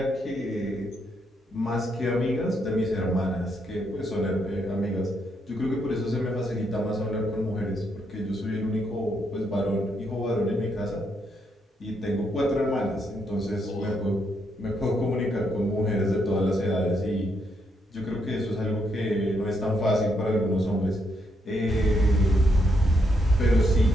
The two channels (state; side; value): normal; both; correlation 0.77